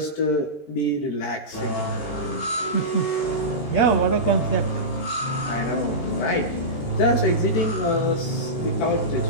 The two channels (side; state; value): right; late; 13 ms